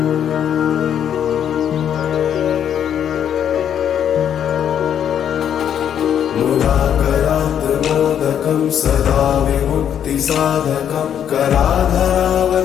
मुदाकरात्मोदकं सदा विमुक्तिसाधकं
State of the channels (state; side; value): quieter; right; 9.2 dB